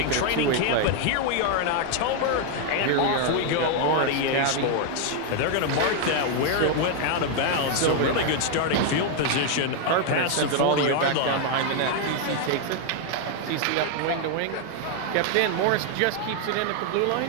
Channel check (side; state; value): both; different; correlation 0.00